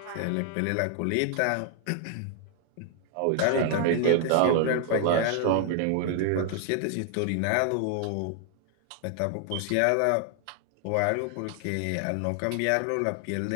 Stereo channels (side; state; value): both; different; correlation 0.00